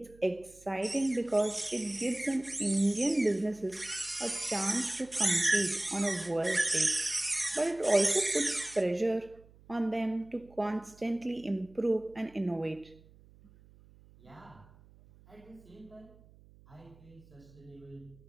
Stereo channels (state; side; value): noise; right; hum, 25 dB below the sound